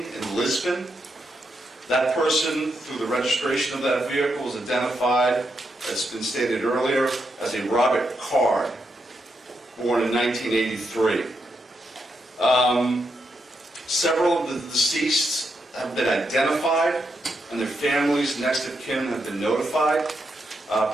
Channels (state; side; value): normal; both; correlation 0.82